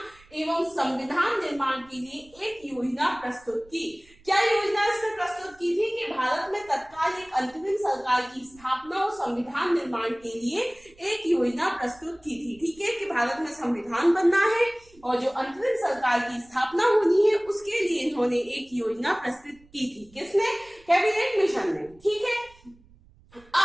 एवं संविधान निर्माण के लिए एक योजना प्रस्तुत की। क्या योजना इसने प्रस्तुत की थी? कि भारत में तत्काल एक अंतरिम सरकार की स्थापना और संविधान निर्माण के लिए एक योजना प्रस्तुत की थी। ठीक है, कि भारत में संविधान बनना है और जो अंतरिम सरकार की स्थापना होनी है उसके लिए इन्होंने एक योजना प्रस्तुत की थी। किसने? कैबिनेट मिशन ने। ठीक है,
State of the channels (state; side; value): noise; right; rumble, 27 dB below the sound